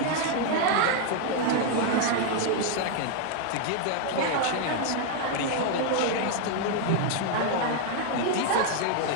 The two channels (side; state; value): both; different; correlation 0.00